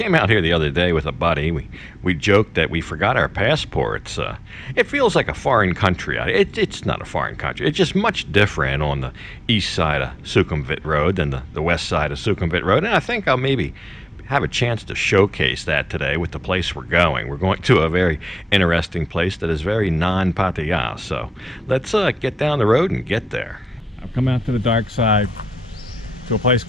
out here the other day with a buddy. We joked that we forgot our passports. It feels like a foreign country. It's not a foreign country. It's just much different on the east side of Sukhumvit Road than the west side of Sukhumvit Road. And I think I'll maybe have a chance to showcase that today with the place we're going. We're going to a very interesting place that is very non-Pattaya. So let's get down the road and get there. I've come out to the dark side, to a place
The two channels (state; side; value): normal; both; correlation 0.93